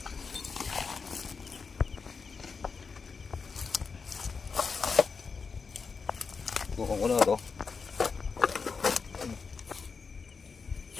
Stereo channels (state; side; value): quieter; right; 5.1 dB